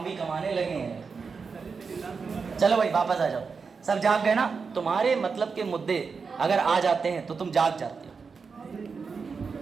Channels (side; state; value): left; quieter; 5.2 dB